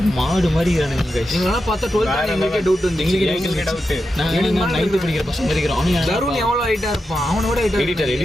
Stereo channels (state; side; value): normal; both; correlation 0.88